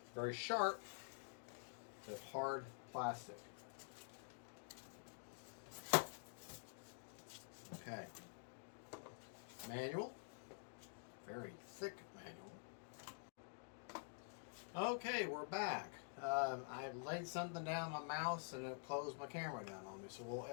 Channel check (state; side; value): silent; right; digital silence